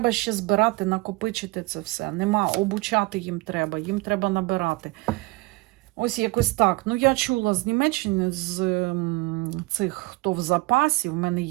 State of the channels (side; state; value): left; quieter; 23.3 dB